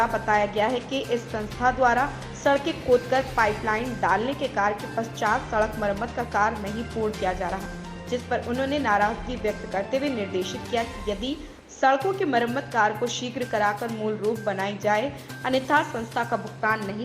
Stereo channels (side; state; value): both; identical; correlation 1.00